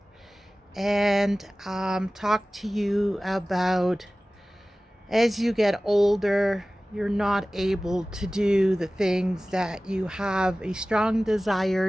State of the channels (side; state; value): both; normal; correlation 0.97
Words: and talk to you about as you get older, you're not able to do the things that you have a strong desire